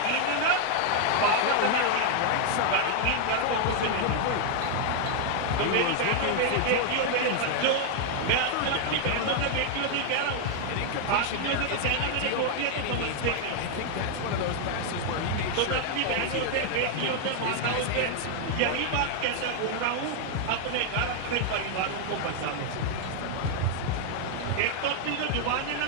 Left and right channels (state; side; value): different; both; correlation 0.00